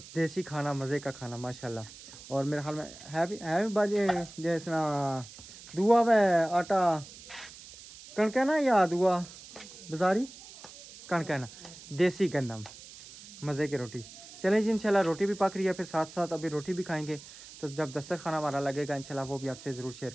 देसी खाना मज़े का खाना माशाल्लाह। और मेरे ख्याल में है भी बाजी जैसा दुआ व आटा कणक है ना या दुआ बाजारी कणक है ना देसी गंदम मज़े की रोटी। चलें जी इंशाल्लाह रोटी भी पक रही है फिर साथ साथ अभी रोटी भी खाएंगे तो जब दस्तरखाना खाना हमारा लगेगा इंशाल्लाह वो भी आपसे ज़रूर शेयर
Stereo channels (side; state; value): right; noise; hiss, 17 dB below the sound